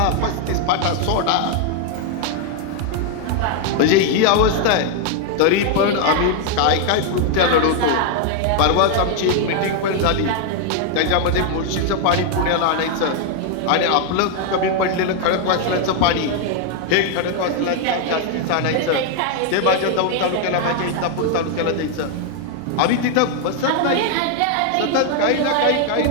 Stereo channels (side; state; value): both; different; correlation 0.00